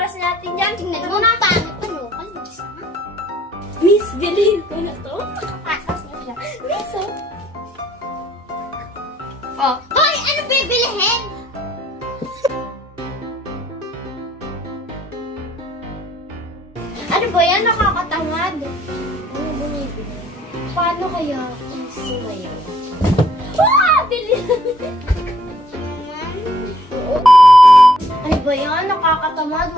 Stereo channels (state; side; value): normal; both; correlation 0.63